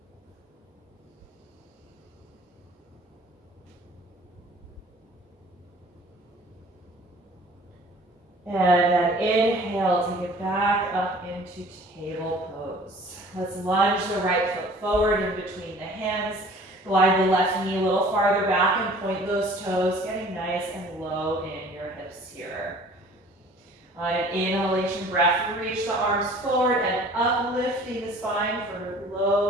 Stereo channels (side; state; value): both; normal; correlation 0.49